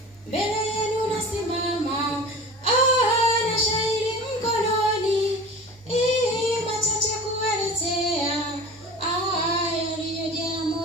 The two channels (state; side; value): normal; both; correlation 0.37